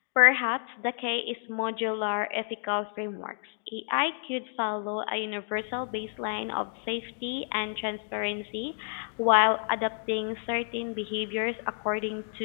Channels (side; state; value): right; silent; digital silence